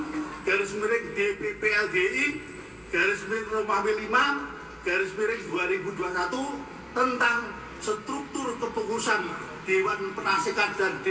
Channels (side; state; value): both; identical; correlation 1.00